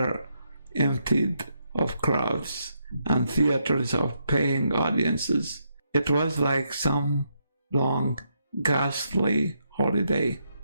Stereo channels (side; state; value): both; inverted; correlation -0.78